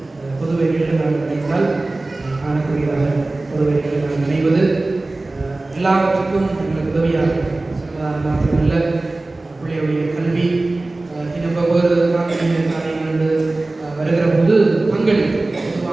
பொது வேலைகளில் நாங்கள் நினைத்தால் காணக்கூடியதாக பொது வேலைகளில் நாங்கள் நினைவது எல்லாவற்றுக்கும் எங்களுக்கு உதவியாக மாத்திரமல்ல, பிள்ளையுடைய கல்வி இன்னும் ஒவ்வொரு காரியங்கள் வருகிற போது பங்களிப்பு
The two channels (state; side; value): quieter; left; 3.0 dB